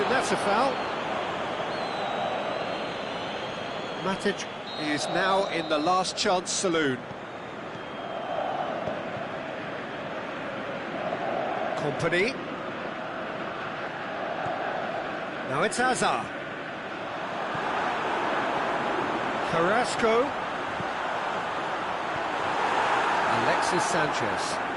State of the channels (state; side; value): identical; both; correlation 1.00